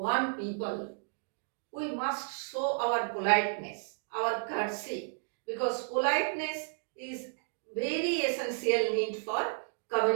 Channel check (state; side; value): silent; left; digital silence